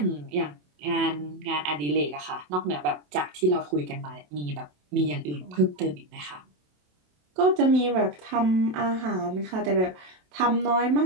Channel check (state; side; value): late; left; 27 ms